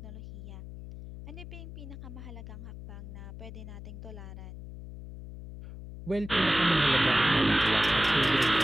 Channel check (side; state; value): left; noise; hum, 12 dB below the sound